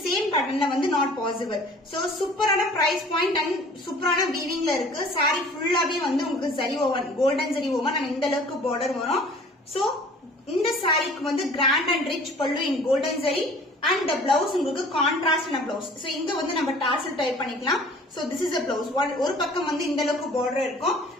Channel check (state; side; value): normal; both; correlation 0.49